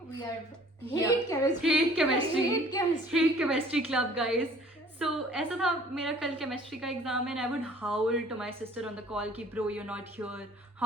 We are Yeah. hate chemistry. Hate chemistry. Hate chemistry. Hate chemistry club, guys. So ऐसा था, मेरा कल chemistry का exam है and I would howl to my sister on the call कि bro, you're not here.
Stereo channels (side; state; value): both; normal; correlation 0.53